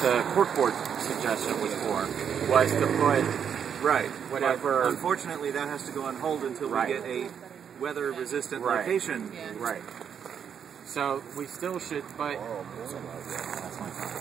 court board suggestion was for, was to put whatever. But unfortunately, that has to go on hold until we get a weather-resistant location. Right. So we still should, but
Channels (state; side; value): quieter; left; 7.9 dB